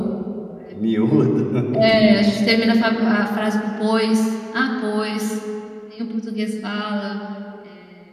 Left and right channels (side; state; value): both; identical; correlation 1.00